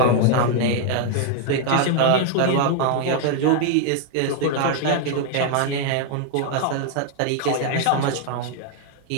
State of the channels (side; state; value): both; different; correlation 0.00